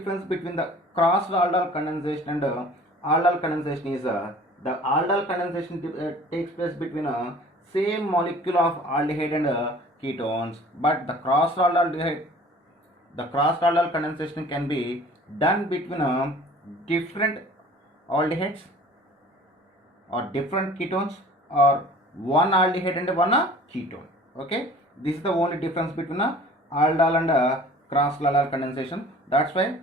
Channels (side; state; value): both; normal; correlation 0.47